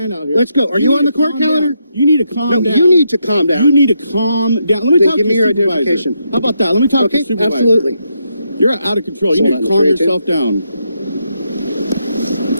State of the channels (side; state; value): both; inverted; correlation -0.80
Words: out here. Let's go. Are you need on the to court calm calendar? down. You need to calm No, down. you need to calm down. You need to calm down. Let me Then talk give to me your your supervisor. identification. How about that? Let me talk to Okay, your supervisor. absolutely. You're out of control. You Hold need on, to calm 382. yourself down.